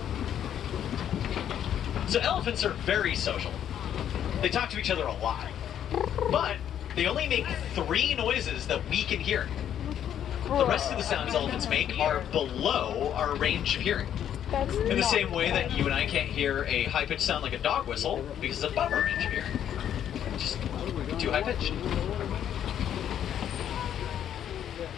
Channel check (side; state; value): right; quieter; 9.9 dB